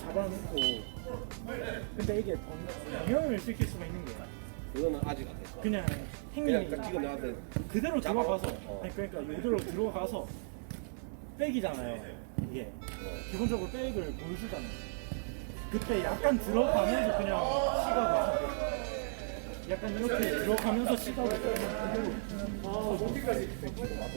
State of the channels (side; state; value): left; silent; 54 dB below the other